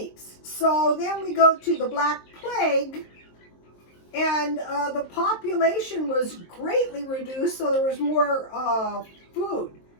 So then we go to the Black Plague, and the population was greatly reduced, so there was more food.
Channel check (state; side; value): late; right; 23 ms